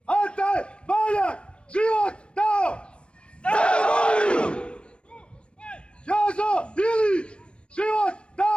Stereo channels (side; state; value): right; late; 0.057 ms